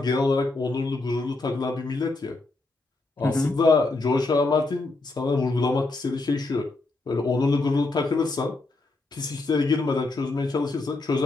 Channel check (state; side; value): quieter; right; 3.2 dB